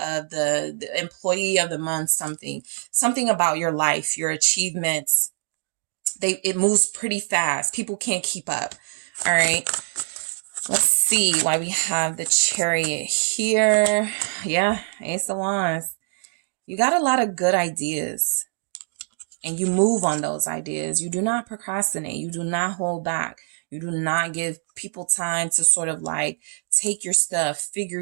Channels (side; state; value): left; silent; 63 dB below the other